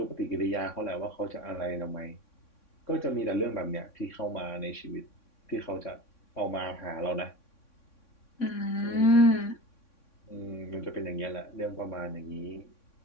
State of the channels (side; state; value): right; late; 3.6 ms